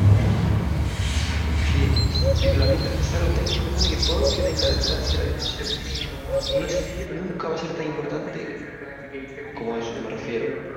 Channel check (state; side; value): identical; both; correlation 1.00